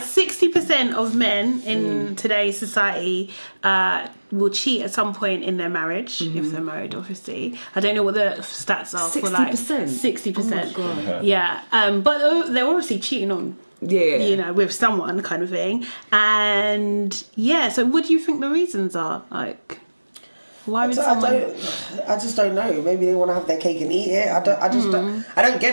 60% of men in today's society will cheat at some point in their marriage, if they're married, obviously. I don't know what the stats are for like 60%. Oh my God. Yeah, but they're obviously cheating on, with someone kind of thing. And yeah, so what do you think the reasons are? Like, why would someone? I just don't know. Maybe they want to have their cake and eat it. I don't get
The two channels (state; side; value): inverted; both; correlation -1.00